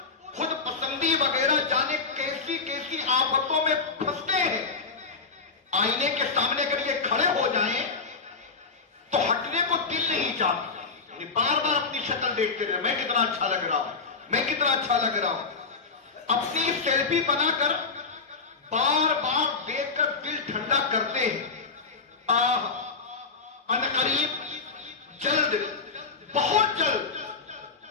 خود پسندی وغیرہ جانے کیسی کیسی آفتوں میں پھنستے ہیں. آئینے کے سامنے اگر یہ کھڑے ہو جائیں تو ہٹنے کو دل نہیں چاہتا, بار بار اپنی شکل دیکھتے رہے, میں کتنا اچھا لگ رہا ہوں, میں کتنا اچھا لگ رہا ہوں. اپنی سیلفی بنا کر بار بار دیکھ کر دل ٹھنڈا کرتے ہیں. عنقریب جلد, بہت جلد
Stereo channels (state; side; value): quieter; right; 4.6 dB